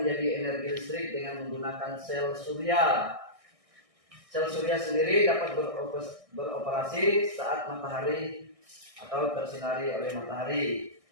menjadi energi listrik dengan menggunakan sel surya. Sel surya sendiri dapat beroperasi saat matahari atau tersinari oleh matahari.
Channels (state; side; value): late; left; 1.6 ms